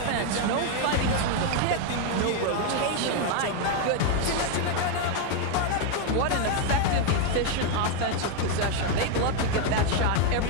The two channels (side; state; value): both; different; correlation 0.01